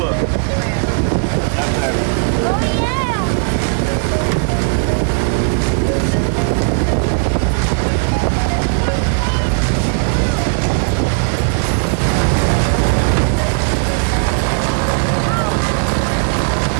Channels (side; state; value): left; silent; 69 dB below the other